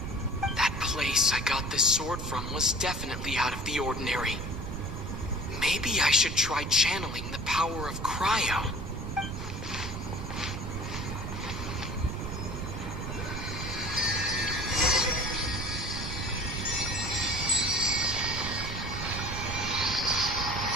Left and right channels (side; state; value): right; noise; rumble, 5 dB below the sound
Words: That place I got this sword from was definitely out of the ordinary. Maybe I should try channeling the power of cryo.